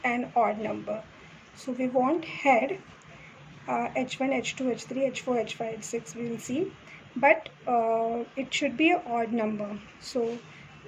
an odd number. So we want head, H1, H2, H3, H4, H5, H6 we will see. But it should be an odd number. So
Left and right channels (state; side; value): identical; both; correlation 1.00